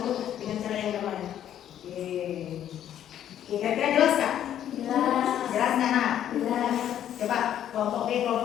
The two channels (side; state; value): right; quieter; 10.7 dB